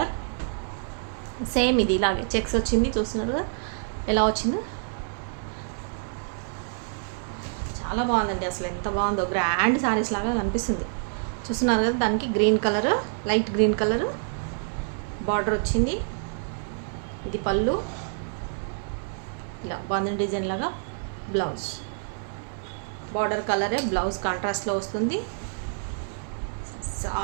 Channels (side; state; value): left; silent; digital silence